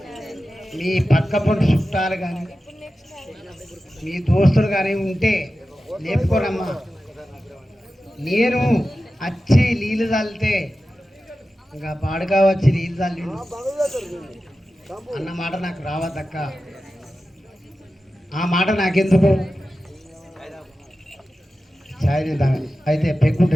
మీ పక్క పొంటి చుట్టాలు కానీ మీ దోస్తులు కానీ ఉంటే లేపుకోరమ్మా. నేను వచ్చి నీళ్ళు చల్లితే ఇంకా పాడుగా వచ్చి నీళ్ళు చల్లి అన్నమాట నాకు రావద్దక్క. ఆ మాట నాకెందుకు ఛాయ్ అయితే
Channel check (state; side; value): normal; both; correlation 0.93